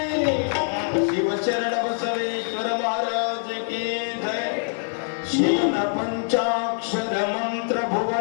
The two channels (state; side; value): silent; right; digital silence